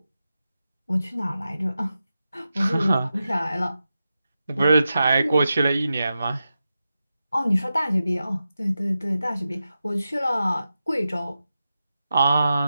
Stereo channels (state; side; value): inverted; both; correlation -0.91